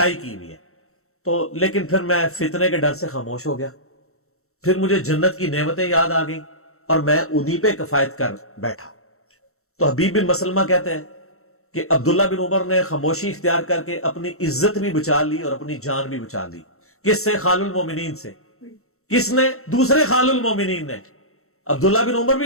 کی ہوئی ہے. تو لیکن پھر میں فتنے کے ڈر سے خاموش ہو گیا. پھر مجھے جنت کی نعمتیں یاد آ گئیں اور میں انہی پہ کفایت کر بیٹھا. تو حبیب بن مسلمہ کہتے ہیں کہ عبداللہ بن عمر نے خاموشی اختیار کر کے اپنی عزت بھی بچا لی اور اپنی جان بھی بچا لی. کس سے؟ خال المومنین سے. کس نے؟ دوسرے خال المومنین نے. عبداللہ بن عمر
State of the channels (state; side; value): late; right; 0.63 ms